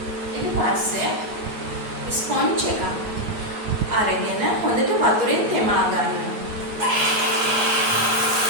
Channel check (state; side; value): late; left; 9.5 ms